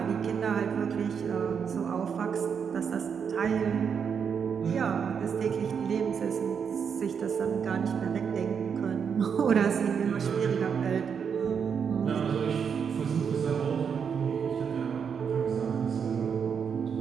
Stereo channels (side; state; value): left; quieter; 6.9 dB